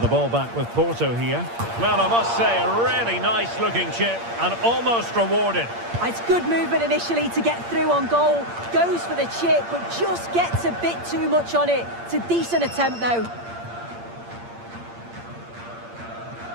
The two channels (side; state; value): left; late; 8.7 ms